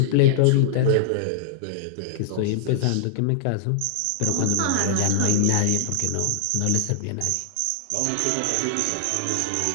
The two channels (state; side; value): different; both; correlation -0.01